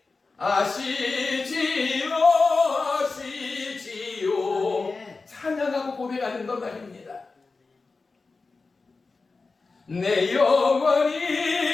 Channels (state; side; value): quieter; right; 4.0 dB